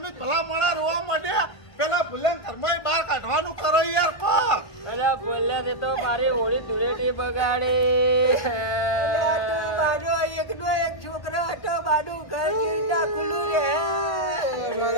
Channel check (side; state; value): right; late; 1.5 ms